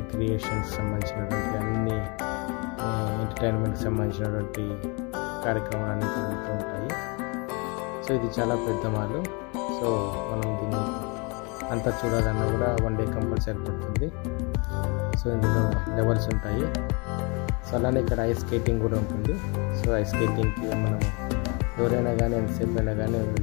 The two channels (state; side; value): quieter; right; 31.1 dB